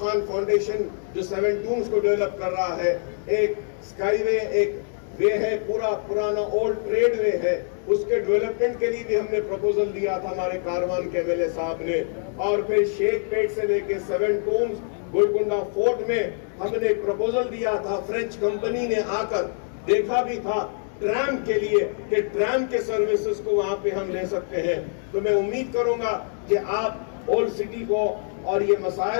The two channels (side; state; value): right; silent; digital silence